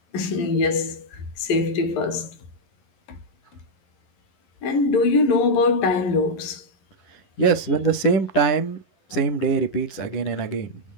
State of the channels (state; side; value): late; right; 11 ms